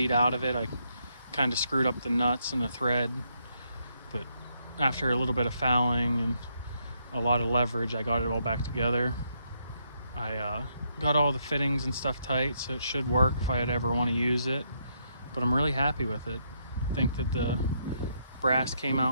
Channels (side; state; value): both; inverted; correlation -0.75